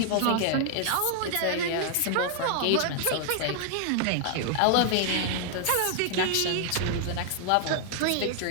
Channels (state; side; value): different; both; correlation 0.00